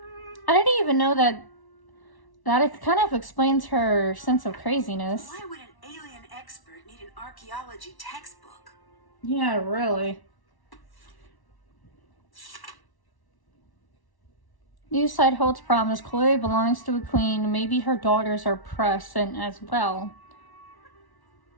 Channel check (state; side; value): late; right; 1.1 ms